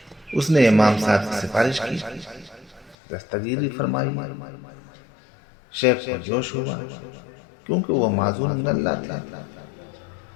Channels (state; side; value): drops out; right; at 3.0 s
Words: اس نے امام صاحب کی سفارش کی، دستگیری فرمائی۔ شیخ کو جوش ہوا کیونکہ وہ معذور من اللہ تھا،